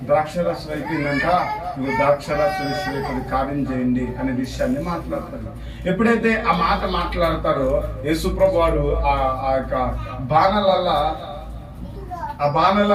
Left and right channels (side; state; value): both; identical; correlation 1.00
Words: ద్రాక్షరసం అయిపోయిందంట, నువ్వు ద్రాక్షరసం విషయం కార్యం చేయండి అనే విషయాన్ని మాట్లాడతాడు. ఎప్పుడైతే ఆ మాట మాట్లాడతారో యేసు ప్రభువారు ఆ యొక్క